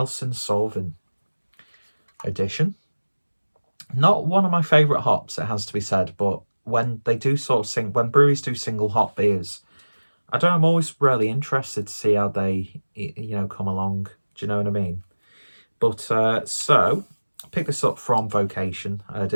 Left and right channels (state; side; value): inverted; both; correlation -1.00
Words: Sauvin edition. Not one of my favourite hops, it has to be said, but when they do when breweries do single hop beers, I don't know, I'm always really interested to see how they, come along. Do you know what I mean? But, so, I picked this up from Vocation. I